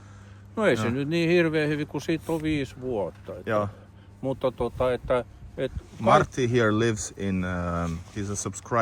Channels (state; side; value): identical; both; correlation 1.00